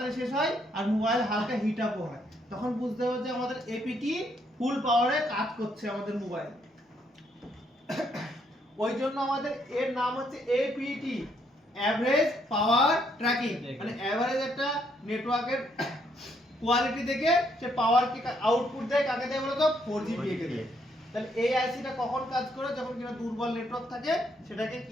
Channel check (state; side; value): normal; both; correlation 0.72